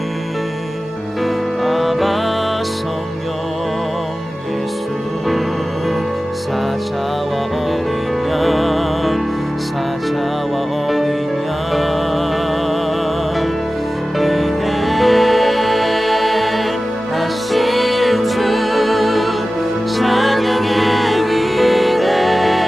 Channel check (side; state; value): both; normal; correlation 0.96